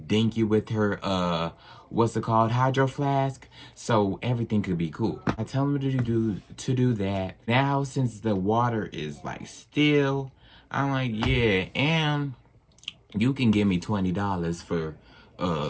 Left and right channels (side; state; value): both; identical; correlation 1.00